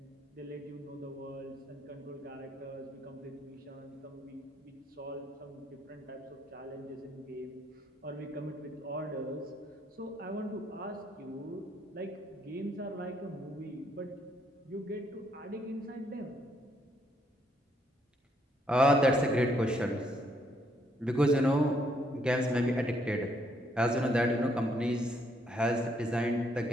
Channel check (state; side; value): normal; both; correlation 0.71